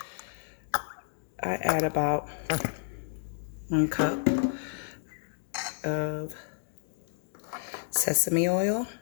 I add about 1 cup of sesame oil.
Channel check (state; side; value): silent; right; digital silence